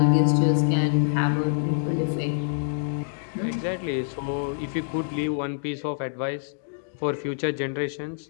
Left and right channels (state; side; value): silent; right; digital silence